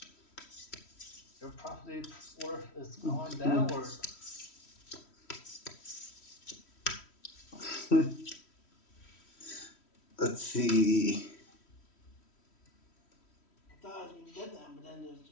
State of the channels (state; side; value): late; right; 3.1 ms